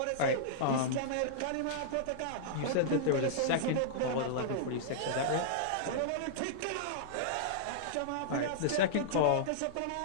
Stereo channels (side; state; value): both; different; correlation -0.02